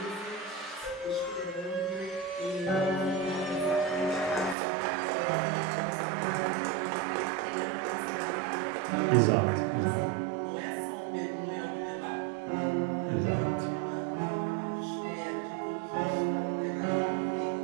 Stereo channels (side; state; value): left; drops out; at 4.5 s